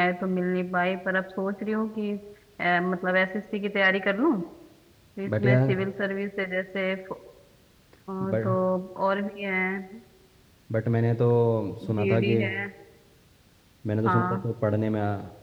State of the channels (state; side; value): identical; both; correlation 1.00